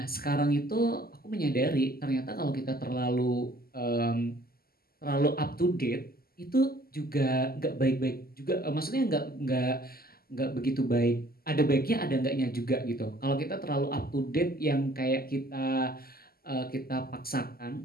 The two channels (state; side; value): late; right; 0.44 ms